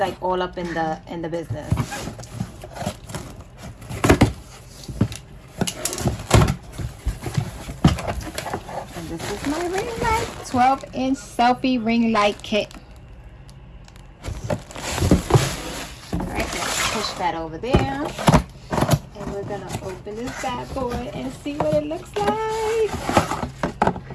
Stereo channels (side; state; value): both; identical; correlation 1.00